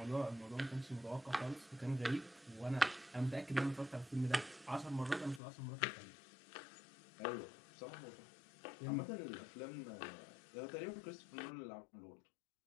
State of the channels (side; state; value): right; drops out; at 5.4 s